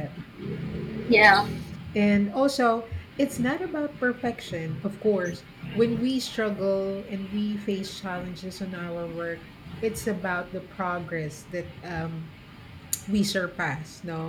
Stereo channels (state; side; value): identical; both; correlation 1.00